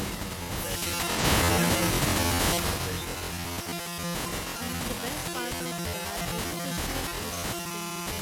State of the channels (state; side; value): identical; both; correlation 1.00